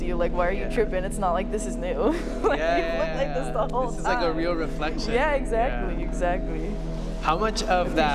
you. Like, why are you tripping? It's not like this is new. Like you look like this the whole time. This is like a real reflection. Yeah, exactly. How much of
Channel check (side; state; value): both; identical; correlation 1.00